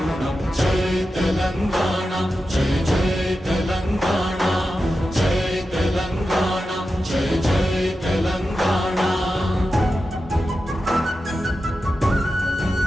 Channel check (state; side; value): normal; both; correlation 0.91